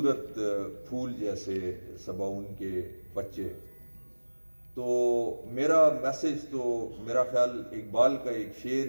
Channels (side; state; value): both; inverted; correlation -1.00